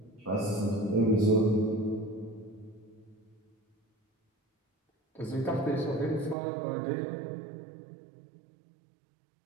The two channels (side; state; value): left; drops out; at 6.4 s